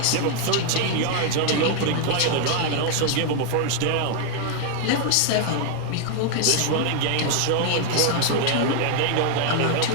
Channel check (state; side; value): different; both; correlation 0.00